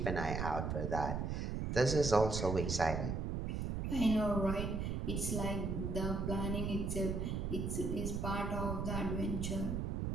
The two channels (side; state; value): right; noise; rumble, 1 dB below the sound